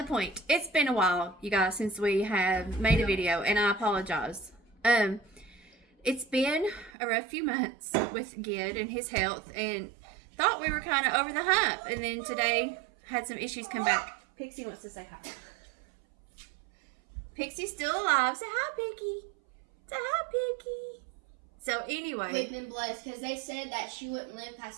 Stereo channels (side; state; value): left; drops out; at 6.9 s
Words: point, it's been a while, you guys, since we have made a video, and I apologize. It's been a rough few months with Gid and his health, and thought we were kind of over the hump, and then today had some issues come back. Pixie wants to say hi. Pixie's still alive. Say hi, Piggy. Say hi, Piggy. So anyway, we've been blessed because they said that she wouldn't live past